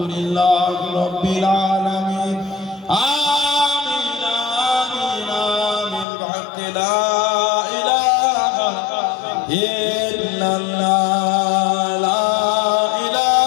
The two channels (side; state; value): right; drops out; at 6.1 s